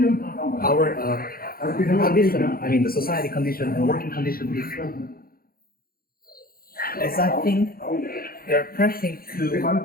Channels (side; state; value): right; late; 0.43 ms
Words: our condition, I mean the society condition and working condition is, as I think, they're pressing to